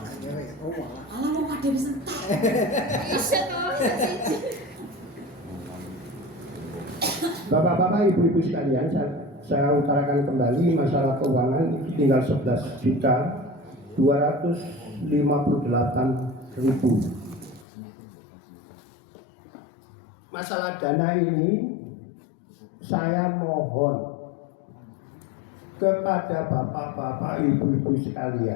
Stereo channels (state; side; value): drops out; right; at 17.7 s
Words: Alah mau kadhe wis entek. Bisa toh. Bapak-bapak, ibu-ibu sekalian, saya utarakan kembali masalah keuangan itu tinggal 11.258.000. Masalah dana ini saya mohon kepada bapak-bapak, ibu-ibu